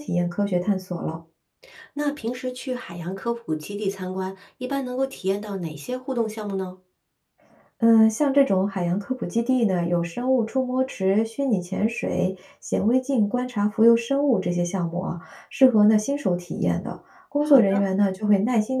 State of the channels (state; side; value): identical; both; correlation 1.00